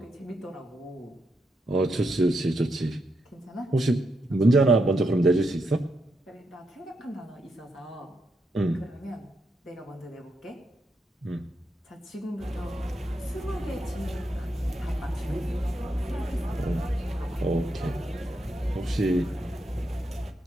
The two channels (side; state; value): both; normal; correlation 0.82